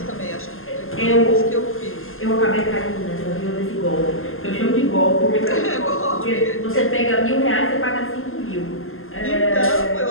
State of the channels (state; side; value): late; right; 0.60 ms